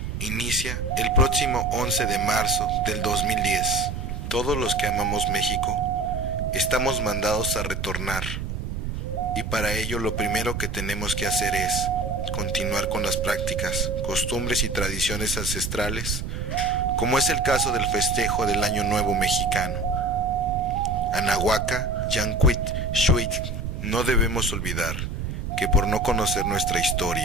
Inicia el próximo 11 de marzo del 2010. Todos los que amamos México estamos mandados a retornar. Y para ello lo primero que tenemos que hacer es continuar con las prácticas, costumbres y tradiciones ancestrales, como es el caso del festejo del Año Nuevo Mexicano. Anahuaca, Yancuit, Xuit. No debemos olvidar que por no conocer nuestra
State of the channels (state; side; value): noise; right; rumble, 4 dB below the sound